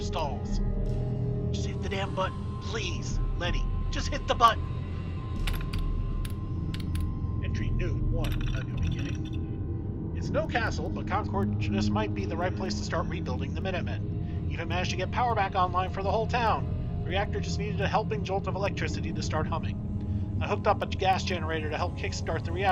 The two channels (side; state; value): both; identical; correlation 1.00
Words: Just hit the damn button, please, Lenny. Just hit the button. Entry new 1, a new beginning. It's no castle, but Concord just might be the right place to start rebuilding the Minutemen. Even managed to get power back online for the whole town. The reactor just needed a helping jolt of electricity to start humming. I hooked up a gas generator to help kickstart the